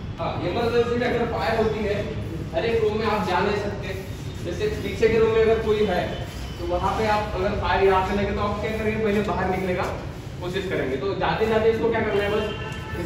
हाँ, इमरजेंसी में अगर फायर होती है, हर एक रूम में आप जा नहीं सकते। जैसे पीछे के रूम में अगर कोई है तो वहाँ पे आप अगर फायर यहाँ से लगे तो आप क्या करेंगे, पहले बाहर निकलने का कोशिश करेंगे। तो जाते जाते इसको क्या करना है, बस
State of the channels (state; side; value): identical; both; correlation 1.00